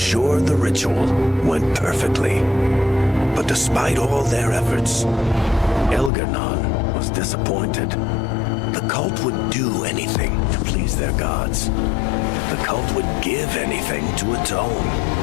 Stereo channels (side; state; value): right; drops out; at 6.1 s